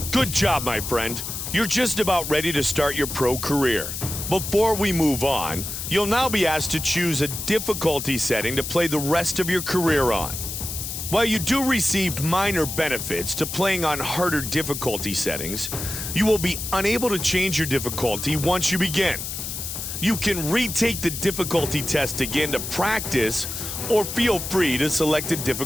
good job, my friend. You're just about ready to start your pro career. Before we move on, you'll now be asked to choose a difficulty setting to play the rest of your career on. While you do receive minor benefits to playing on harder difficulty settings, you will be unable to change your difficulty once you begin. You can retake the difficulty test again to practice, or feel free to select a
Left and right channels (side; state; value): left; noise; hiss, 6 dB below the sound